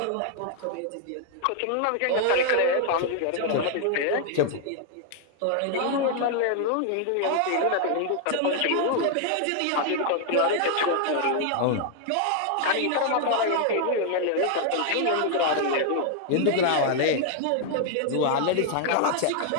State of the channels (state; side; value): different; both; correlation 0.00